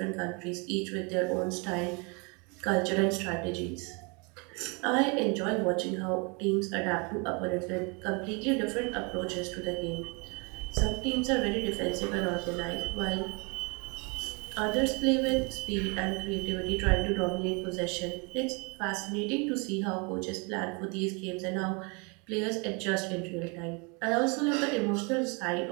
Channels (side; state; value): left; quieter; 31.8 dB